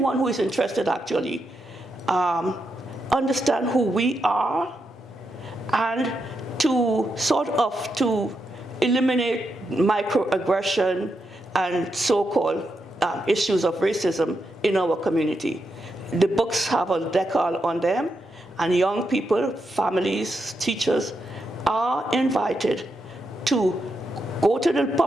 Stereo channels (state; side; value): normal; both; correlation 0.84